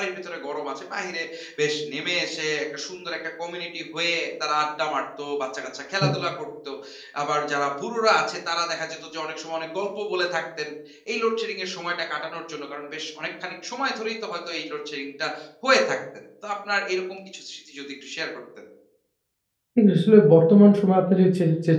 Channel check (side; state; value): both; identical; correlation 1.00